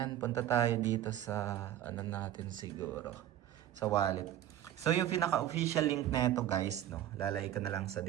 punta tayo dito sa ano natin siguro, sa wallet. So, yung pinaka-official link na ito guys, no, lalagay ko na lang sa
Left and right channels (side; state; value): left; quieter; 12.0 dB